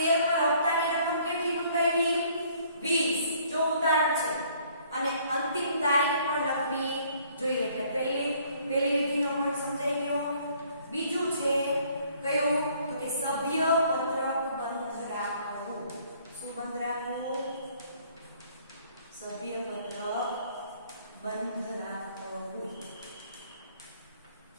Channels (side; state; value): both; inverted; correlation -0.61